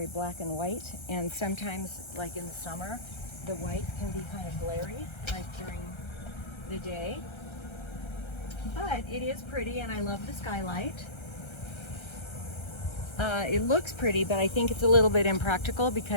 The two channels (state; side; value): late; right; 1.3 ms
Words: black and white, and sometimes, like in the summer, the white can be kind of glary, like during the day. But it is pretty, and I love the skylight. It looks pretty, but I think it's a little bit impractical